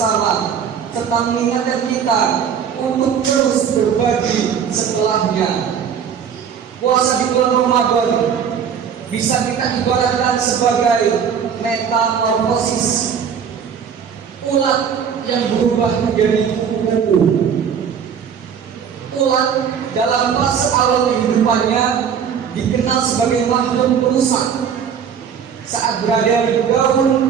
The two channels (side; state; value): left; quieter; 7.5 dB